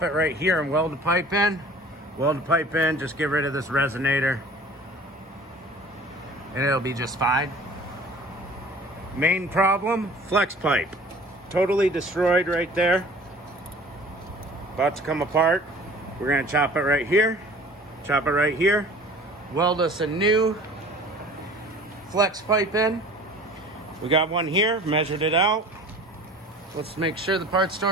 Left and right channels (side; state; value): both; normal; correlation 0.46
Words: it right here and weld the pipe in. Weld the pipe in, just get rid of this resonator and it'll be just fine. Main problem, flex pipe. Totally destroyed right there. About to come apart. We're gonna chop it right here. Chop it right here. Weld us a new flex pipe in. We got one here, measured it out. Let's make sure the parts